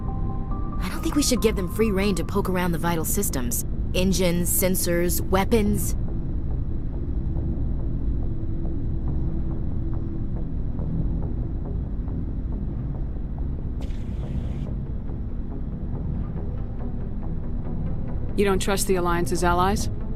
I don't think we should give them free rein to poke around the vital systems. Engines, sensors, weapons. You don't trust the Alliance's allies?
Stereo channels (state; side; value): identical; both; correlation 1.00